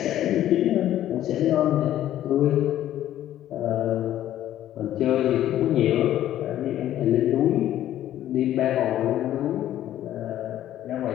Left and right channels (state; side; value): quieter; right; 12.4 dB